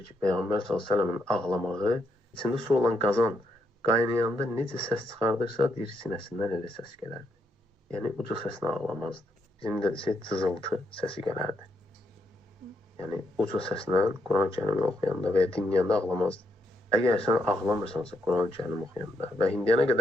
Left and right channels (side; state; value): both; normal; correlation 0.78